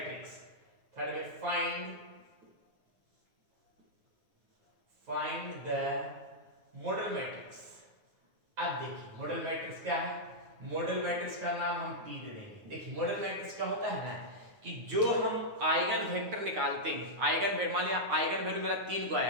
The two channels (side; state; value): left; late; 9.4 ms